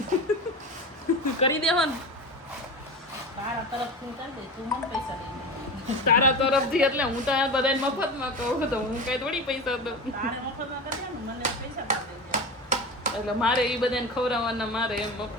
કરી દેવો ને તારા તરફથી. એટલે હું તો આ બધાને મફતમાં કહું તો હું કઈ થોડી પૈસા દઉં. એટલે મારે એ બધાને ખવડાવવાના, મારે એમ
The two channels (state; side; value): normal; both; correlation 0.27